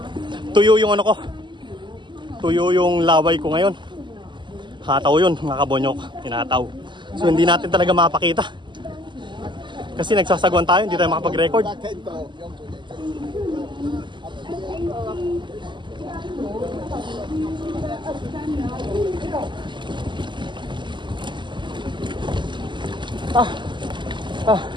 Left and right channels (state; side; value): late; left; 0.22 ms